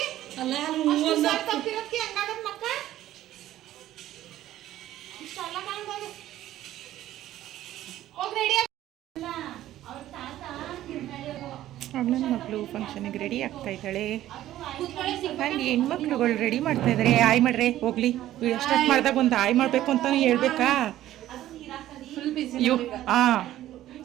ನನ್ನ ಮಕ್ಕಳು ಫಂಕ್ಷನಿಗೆ ರೆಡಿ ಆಗ್ತಾ ಇದ್ದಾಳೆ. ನಾನು ಹೆಣ್ಮಕ್ಳುಗಳು ರೆಡಿ ಮಾಡ್ತಾ ಇದ್ದಾರೆ. ಆಯ್ ಮಾಡ್ರೆ ಹೋಗ್ಲಿ, ವಿಡಿಯೋ ಸ್ಟಾರ್ಟ್ ಮಾಡಿದಾಗ ಒಂದು ಆಯ್ ಮಾಡಬೇಕು ಅಂತಲೂ ಹೇಳ್ಬೇಕಾ?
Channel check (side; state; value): left; quieter; 13.6 dB